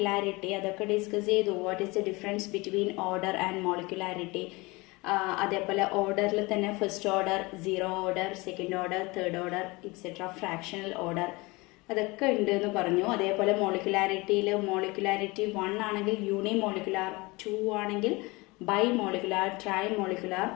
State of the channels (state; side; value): quieter; right; 24.1 dB